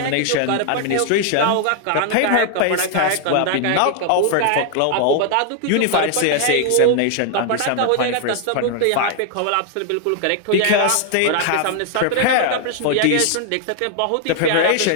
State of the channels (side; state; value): both; different; correlation 0.00